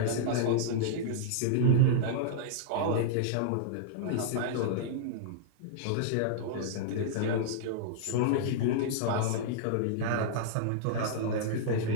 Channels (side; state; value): both; different; correlation -0.02